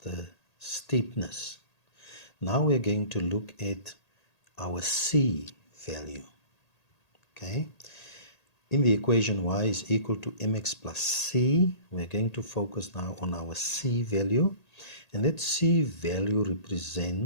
the steepness. Now we're going to look at our c value. Okay, in the equation y is equal to mx plus c, we're going to focus now on our c value, and that c value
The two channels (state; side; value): late; right; 1.8 ms